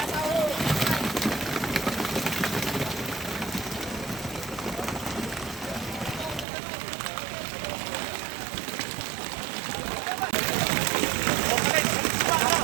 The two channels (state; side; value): drops out; left; at 6.5 s